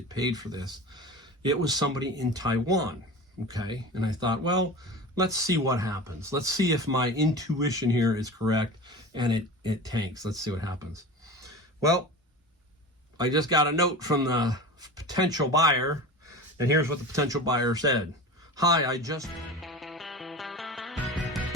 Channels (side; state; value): both; normal; correlation 0.32